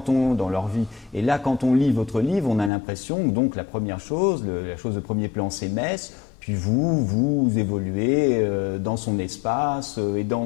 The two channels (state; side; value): drops out; right; at 2.7 s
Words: leur vie, et là, quand on lit votre livre, on a l'impression que donc la première chose, la chose de premier plan, c'est Metz. Puis vous évoluez dans son espace et dans